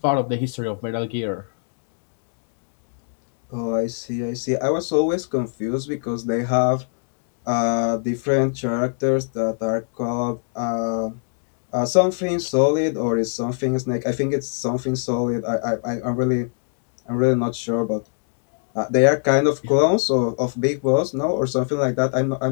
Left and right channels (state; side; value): silent; right; digital silence